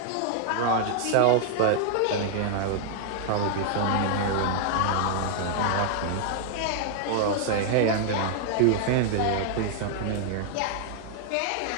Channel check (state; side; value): different; both; correlation 0.00